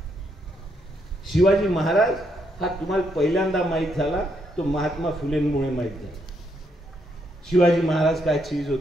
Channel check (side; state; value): both; normal; correlation 0.76